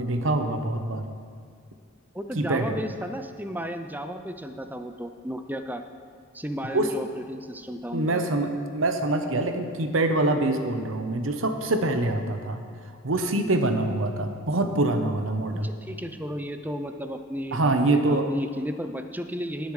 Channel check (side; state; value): both; normal; correlation 0.34